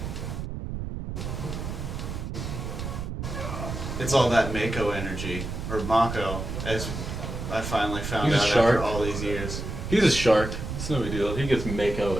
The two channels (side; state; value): right; noise; rumble, 5 dB below the sound